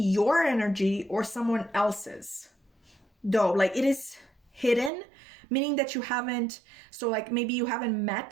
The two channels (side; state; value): left; drops out; at 4.9 s